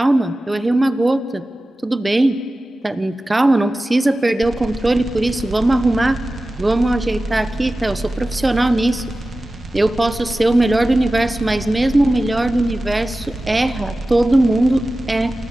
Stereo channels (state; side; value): normal; both; correlation 0.95